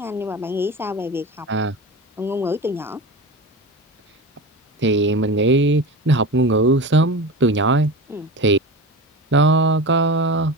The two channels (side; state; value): both; normal; correlation 0.28